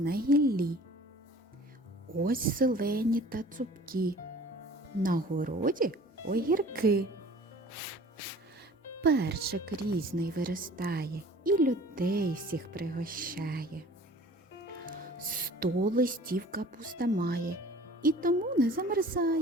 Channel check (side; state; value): both; normal; correlation 0.47